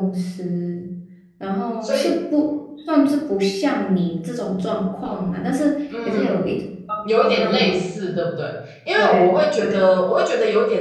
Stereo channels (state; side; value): identical; both; correlation 1.00